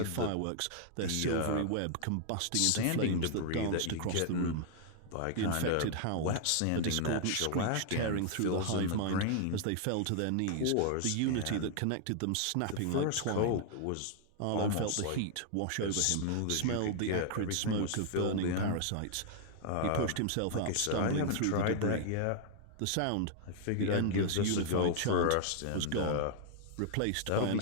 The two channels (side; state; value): both; different; correlation -0.01